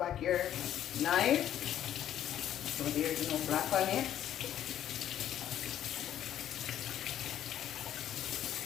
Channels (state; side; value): quieter; right; 11.0 dB